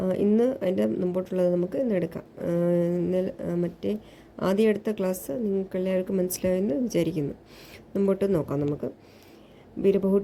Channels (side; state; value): both; identical; correlation 1.00